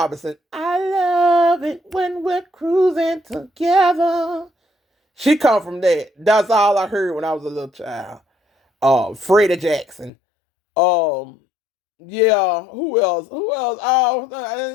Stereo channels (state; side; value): drops out; right; at 10.1 s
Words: I love it when we're cruising together. She come from that. That's all I heard when I was a little child. Freddie Jackson. Um, yeah. Who else? Who else? Oh,